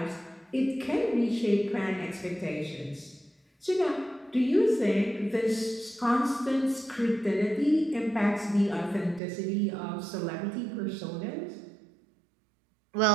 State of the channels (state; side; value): drops out; left; at 9.2 s